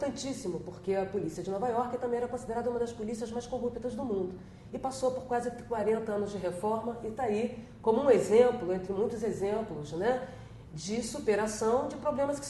porque a polícia de Nova York também era considerada uma das polícias mais corruptas do mundo. E passou por quase 40 anos de reforma e está aí como um exemplo, entre muitos exemplos, né, de superação de problemas que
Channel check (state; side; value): identical; both; correlation 1.00